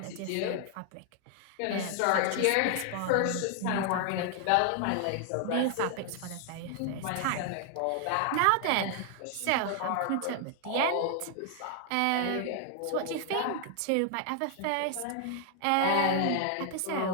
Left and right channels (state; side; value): different; both; correlation 0.00